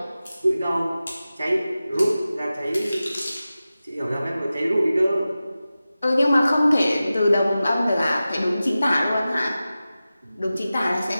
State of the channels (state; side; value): inverted; both; correlation -0.95